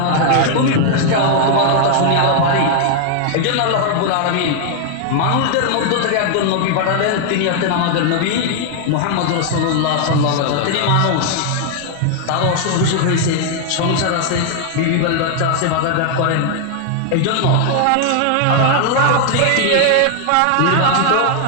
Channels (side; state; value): both; different; correlation 0.00